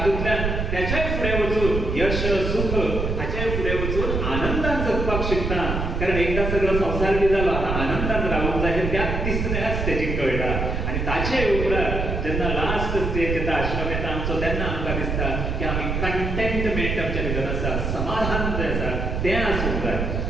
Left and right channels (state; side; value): noise; right; rumble, 1 dB below the sound